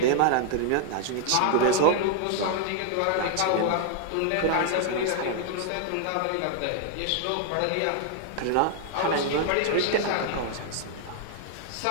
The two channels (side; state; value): both; different; correlation 0.00